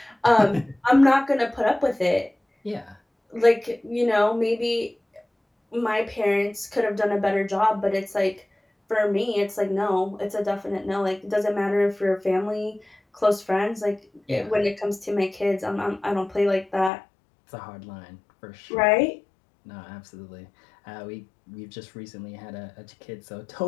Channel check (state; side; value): drops out; right; at 16.9 s